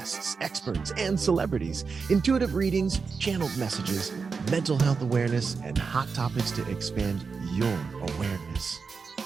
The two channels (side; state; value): left; quieter; 5.1 dB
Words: experts, and celebrities, intuitive readings, channeled messages, mental health awareness, and hot topics to expand your awareness.